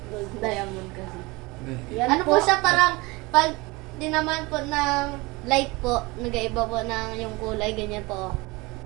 Gold. Diamond kasi. Yan Ano po siya parang, pag dinaman po ng light po, nag-iiba po ng yung kulay, ganyan po.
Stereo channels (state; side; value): quieter; left; 24.0 dB